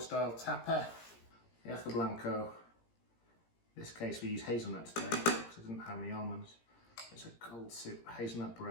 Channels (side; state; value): right; late; 17 ms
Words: tapa Yaca Blanco. In this case we use hazelnut today because it doesn't have any almonds. It's a cold soup, hazelnut